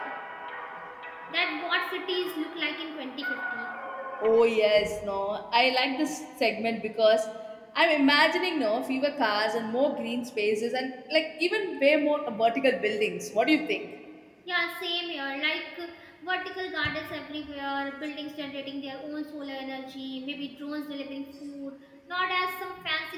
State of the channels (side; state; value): both; identical; correlation 1.00